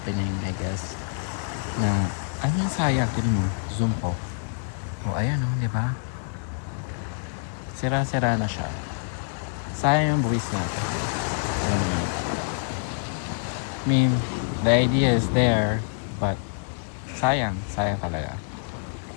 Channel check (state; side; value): silent; right; digital silence